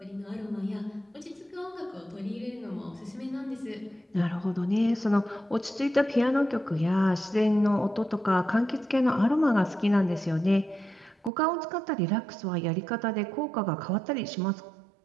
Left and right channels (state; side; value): drops out; left; at 11.3 s